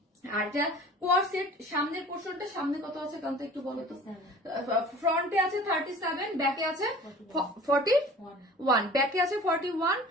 আর যা কোয়ার সেট সামনের পোর্শনটা, সামনে কত আছে কারণ তো একটু বলো তো। ফ্রন্টে আছে 37, ব্যাকে আছে 41, ব্যাকে আছে 41,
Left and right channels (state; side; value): normal; both; correlation 0.44